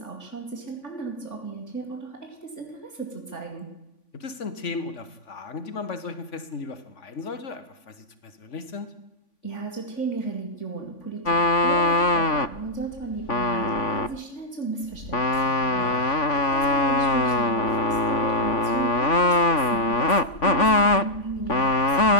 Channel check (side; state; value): right; late; 3.5 ms